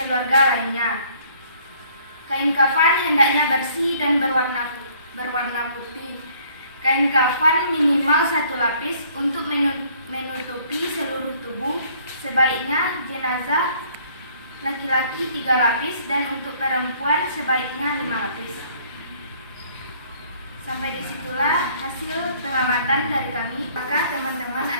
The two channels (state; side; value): inverted; both; correlation -0.60